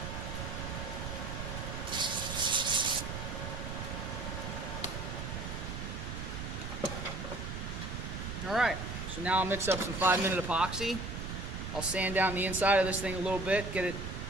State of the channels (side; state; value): right; noise; rumble, 6 dB below the sound